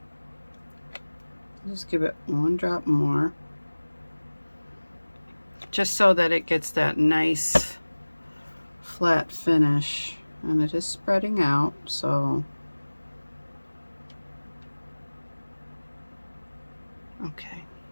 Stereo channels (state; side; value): inverted; both; correlation -1.00